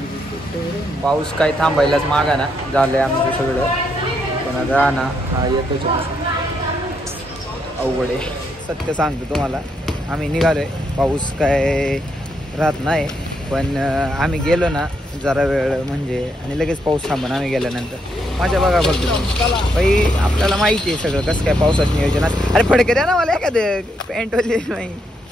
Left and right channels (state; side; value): normal; both; correlation 0.78